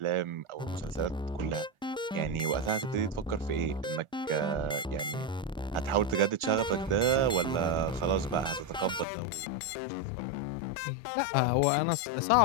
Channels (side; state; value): right; drops out; at 9.1 s